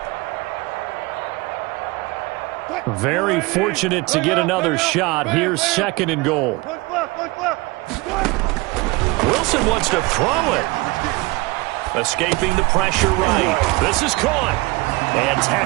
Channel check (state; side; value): quieter; left; 23.3 dB